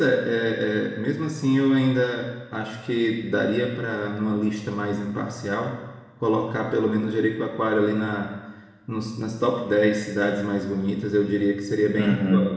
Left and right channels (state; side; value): identical; both; correlation 1.00